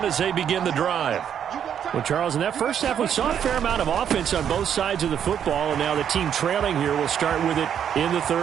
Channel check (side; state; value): left; quieter; 8.8 dB